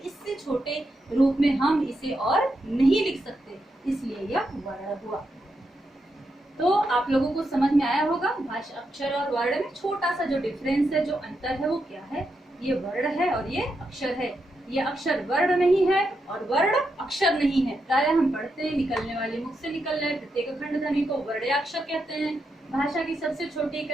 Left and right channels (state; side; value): normal; both; correlation 0.84